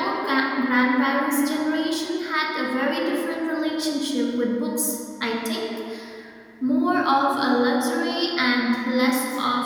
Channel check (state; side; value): identical; both; correlation 1.00